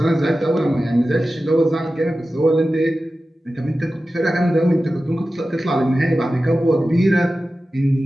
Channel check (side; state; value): both; normal; correlation 0.94